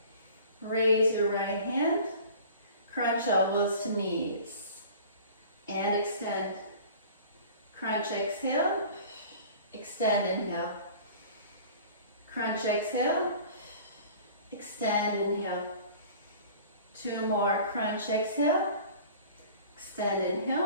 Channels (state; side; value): inverted; both; correlation -0.44